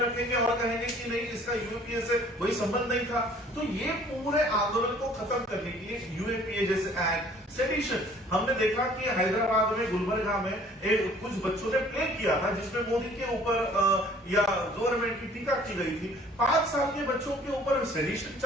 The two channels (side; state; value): both; normal; correlation 0.54